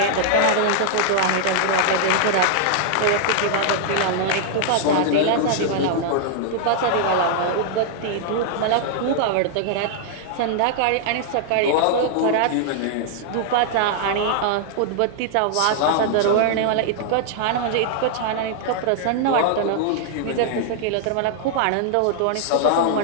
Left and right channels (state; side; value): different; both; correlation -0.01